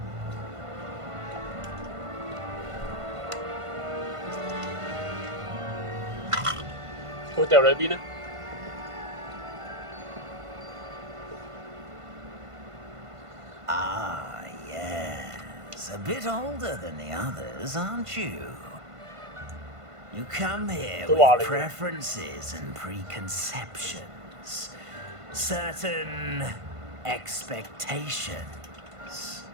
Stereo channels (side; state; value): left; late; 1.5 ms